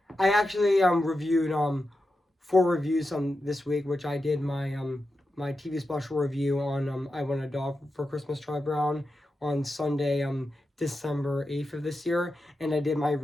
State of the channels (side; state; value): both; normal; correlation 0.90